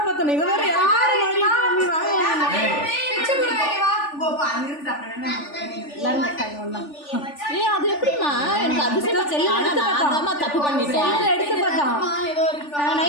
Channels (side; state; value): right; late; 3.4 ms